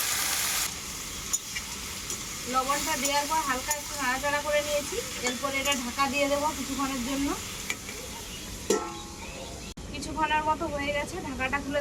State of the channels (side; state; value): both; identical; correlation 1.00